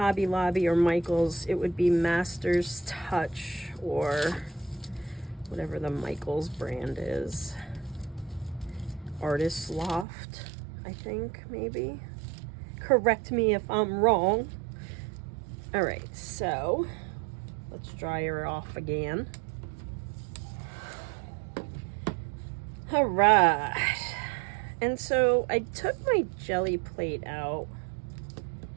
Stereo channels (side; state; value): left; drops out; at 10.1 s